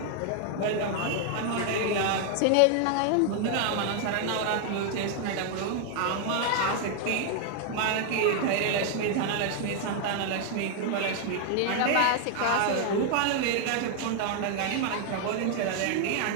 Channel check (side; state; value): both; different; correlation 0.00